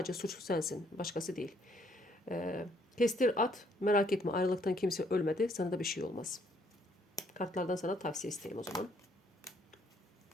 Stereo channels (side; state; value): both; normal; correlation 0.67